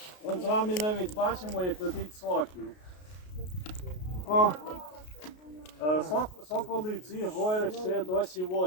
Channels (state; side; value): late; right; 33 ms